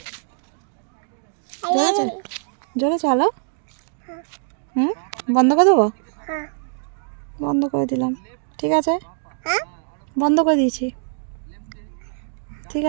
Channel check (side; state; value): left; silent; digital silence